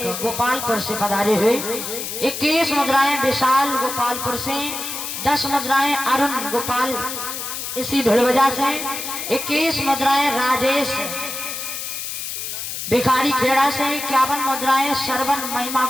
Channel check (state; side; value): noise; left; hiss, 6 dB below the sound